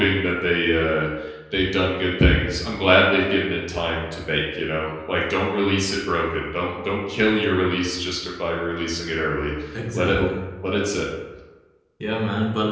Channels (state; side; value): identical; both; correlation 1.00